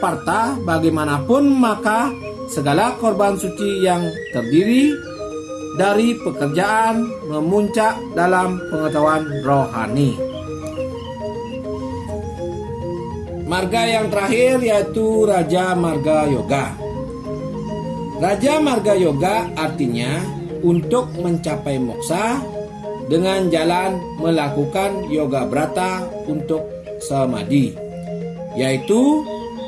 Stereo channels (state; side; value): identical; both; correlation 1.00